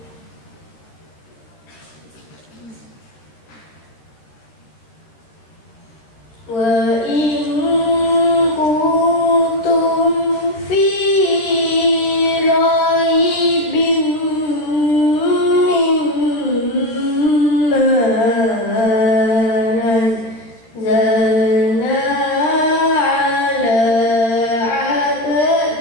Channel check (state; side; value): late; right; 13 ms